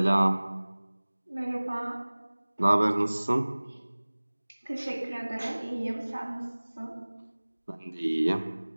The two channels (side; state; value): both; inverted; correlation -1.00